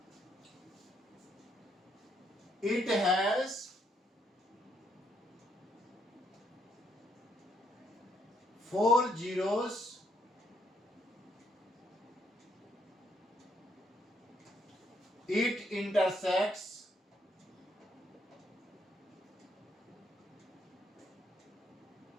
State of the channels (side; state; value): both; normal; correlation 0.72